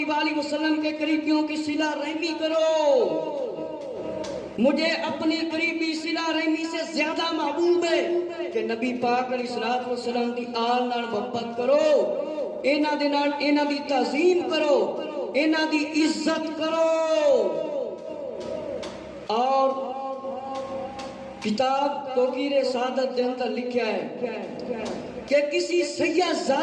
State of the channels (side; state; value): both; identical; correlation 1.00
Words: وآلہ وسلم کے قریبیوں کی صلہ رحمی کرو. مجھے اپنی قریبی صلہ رحمی سے زیادہ محبوب ہے کہ نبی پاک علیہ الصلوۃ والسلام دی آل نال محبت کرو، انہاں دی تعظیم کرو، انہاں دی عزت کرو. اور کتاب توقیر سعادت دے اندر لکھا ہے کہ کسی سیاہ